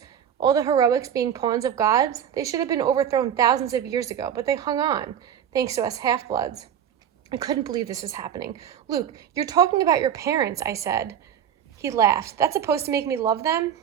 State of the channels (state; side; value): quieter; left; 9.2 dB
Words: All the heroics being pawns of gods? They should have been overthrown thousands of years ago, but they hung on, thanks to us half-bloods." I couldn't believe this was happening. "Luke, you're talking about your parents," I said. He laughed. "That's supposed to make me love them?